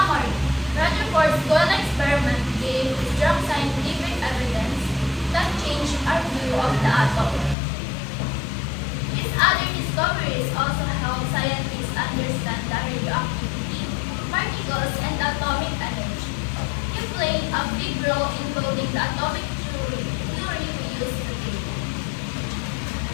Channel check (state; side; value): drops out; right; at 7.6 s